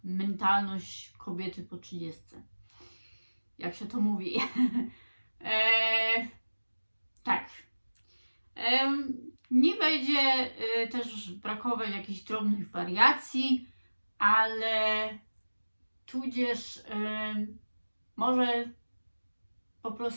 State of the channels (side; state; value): both; inverted; correlation -1.00